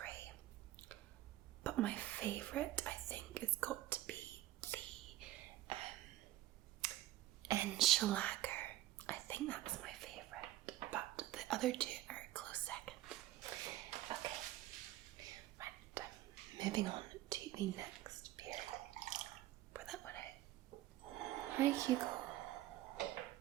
But my favourite, I think, has got to be the Enchilager. I think that's my favourite, but the other two are a close second. Okay, right, moving on to the next beer. Pour that one out. Hi, Hugo.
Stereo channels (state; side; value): quieter; left; 15.0 dB